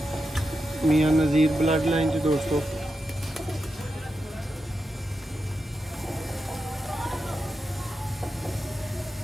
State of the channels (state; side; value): normal; both; correlation 0.88